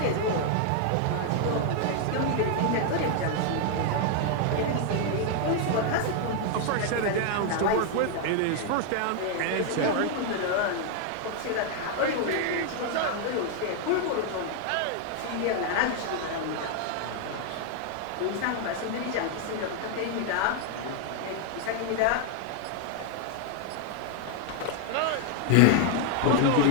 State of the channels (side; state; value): both; different; correlation 0.00